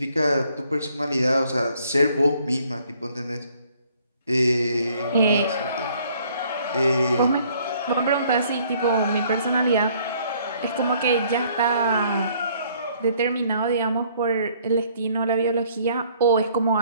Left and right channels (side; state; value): both; inverted; correlation -0.62